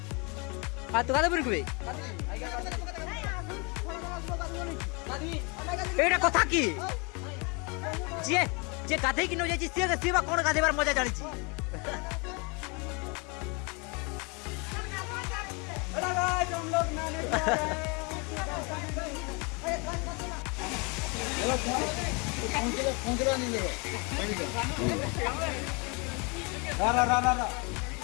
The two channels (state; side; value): quieter; right; 31.2 dB